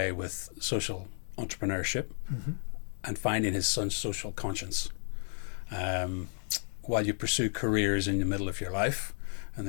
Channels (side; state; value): right; silent; digital silence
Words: with social entrepreneurship. Mm-hmm. And finding his son's social conscience while you pursue careers in the middle of your life and